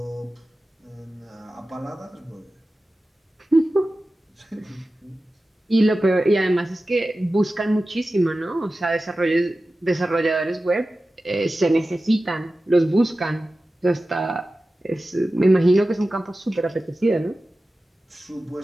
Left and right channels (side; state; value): both; normal; correlation 0.95